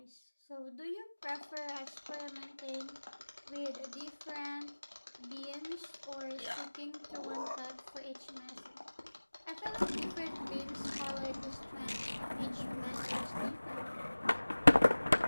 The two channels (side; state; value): both; inverted; correlation -1.00